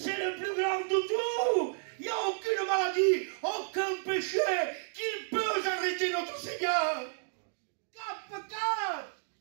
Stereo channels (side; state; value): left; silent; digital silence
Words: le plus grand de tout. Il n'y a aucune maladie, aucun péché qui peut arrêter notre Seigneur. Cap.